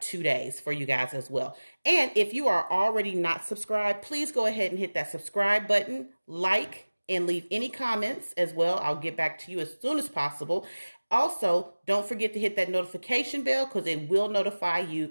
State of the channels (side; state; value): both; inverted; correlation -1.00